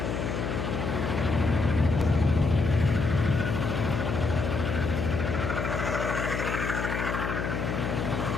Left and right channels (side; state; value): left; noise; hum, 2 dB below the sound